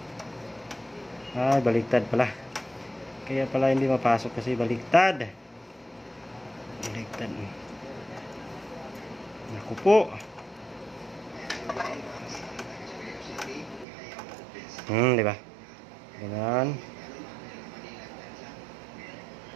Ay, baliktad pala. Kaya pala hindi mapasok kasi baliktad. Baliktad. Naku po. Diba? Ganyan.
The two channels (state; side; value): drops out; left; at 13.9 s